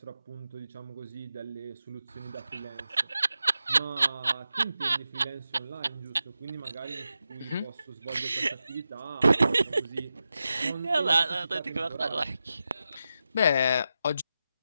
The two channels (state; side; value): inverted; both; correlation -0.90